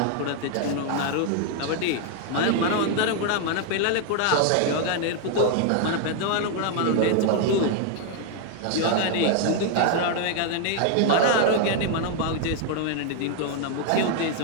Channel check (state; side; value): different; both; correlation 0.00